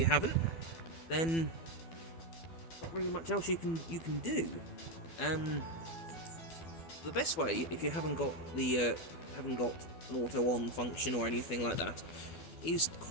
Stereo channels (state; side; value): late; right; 12 ms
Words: haven't, then not really much else you can do. The best way, if you haven't got an auto on function or anything like that, is